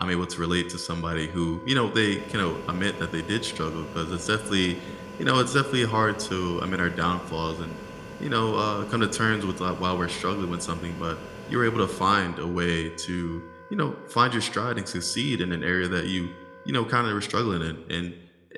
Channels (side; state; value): both; identical; correlation 1.00